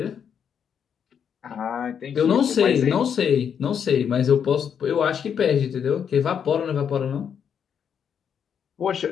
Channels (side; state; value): right; quieter; 7.8 dB